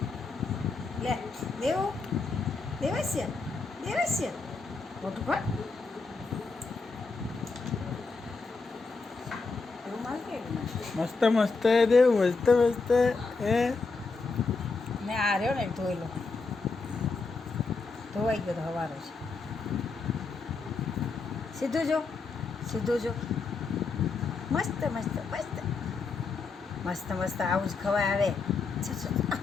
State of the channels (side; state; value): right; quieter; 4.2 dB